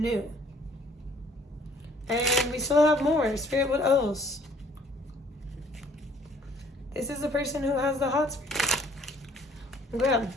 new. And we still have more. Spirit, what else? This is the person who has the hots for you. Grab.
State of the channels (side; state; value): both; normal; correlation 0.58